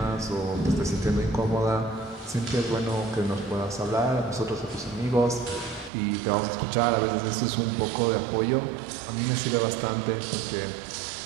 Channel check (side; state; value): left; drops out; at 5.9 s